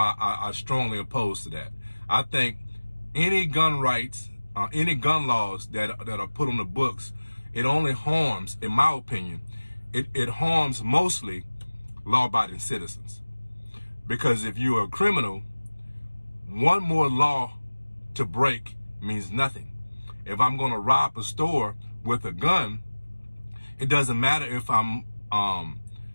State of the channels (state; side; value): inverted; both; correlation -1.00